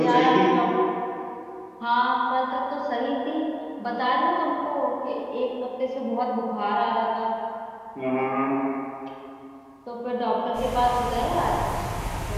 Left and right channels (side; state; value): both; identical; correlation 1.00